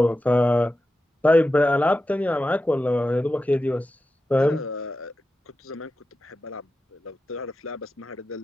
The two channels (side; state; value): both; normal; correlation 0.92